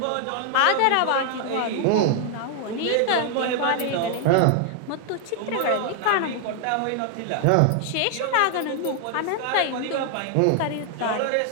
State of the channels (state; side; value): different; both; correlation 0.00